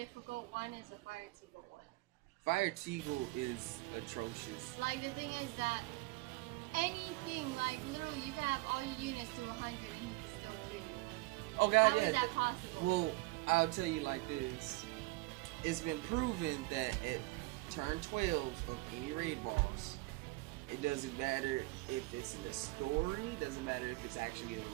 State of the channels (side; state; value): left; quieter; 21.6 dB